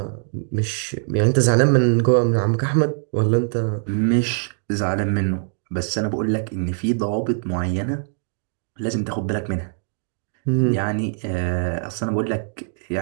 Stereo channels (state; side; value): silent; left; digital silence